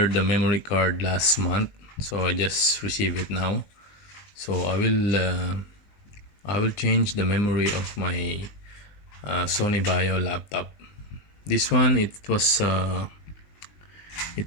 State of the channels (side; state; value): right; late; 19 ms